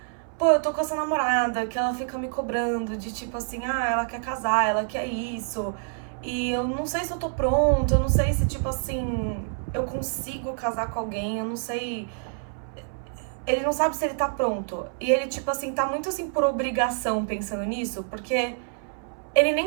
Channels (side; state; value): left; silent; 60 dB below the other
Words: pô, eu tô com essa namorada que ela fica me cobrando de tipo assim, ela quer casar, ela quer isso. E eu não sei se eu tô pronta, eu não sei se tipo assim, eu consigo casar com alguém, eu não sei. Ele não sabe se ele tá pronto. E ele tipo assim, tá muito assim por obrigação pensando nisso, porque ele